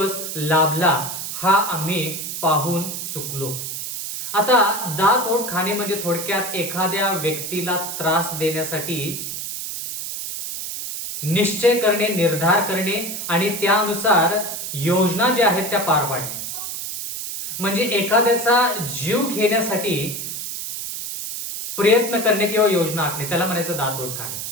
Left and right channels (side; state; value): right; noise; hiss, 6 dB below the sound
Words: लाभला, हा आम्ही पाहून चुकलो. आता दात ओठ खाणे म्हणजे थोडक्यात एखाद्या व्यक्तीला त्रास देण्यासाठी निश्चय करणे, निर्धार करणे आणि त्यानुसार योजना ज्या आहेत त्या पार पाडणे. म्हणजे एखाद्याचा जीव घेण्यासाठी प्रयत्न करणे किंवा योजना आखणे, त्याला म्हणायचं दात ओठ खाणे.